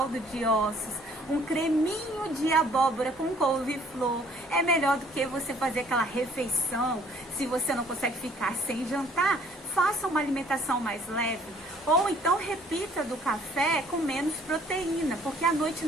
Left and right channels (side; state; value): both; normal; correlation 0.59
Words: de ossos, um creminho de abóbora com couve-flor, é melhor do que você fazer aquela refeição. Se você não consegue ficar sem jantar, faça uma alimentação mais leve, ou então repita do café com menos proteína, porque à noite